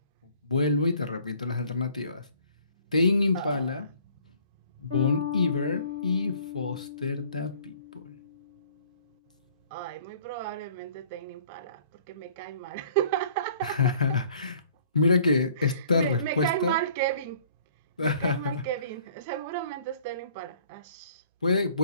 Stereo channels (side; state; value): both; inverted; correlation -0.55